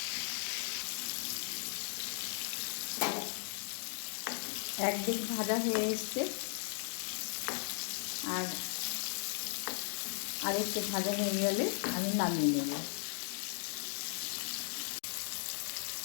একদিক ভাজা হয়ে এসছে, আর আরেকটু ভাজা হয়ে গেলে আমি নামিয়ে নেব।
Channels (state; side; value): silent; right; 53 dB below the other